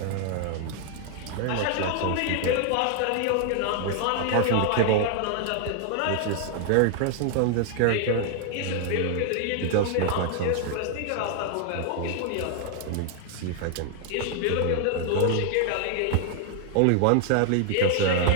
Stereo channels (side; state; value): both; different; correlation 0.00